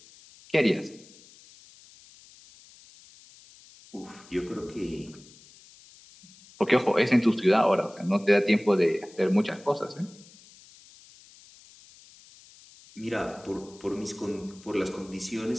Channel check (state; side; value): noise; left; hiss, 24 dB below the sound